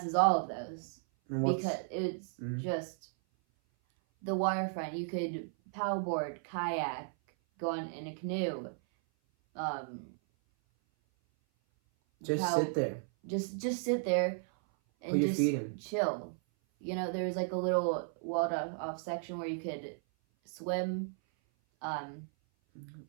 all of those because it's just the waterfront. You could paddleboard, kayak, go on in a canoe. Sit there. Just sit there and put your just feet in. Chill. You know, there's like a little walled off section where you could swim. And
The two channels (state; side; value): silent; left; 55 dB below the other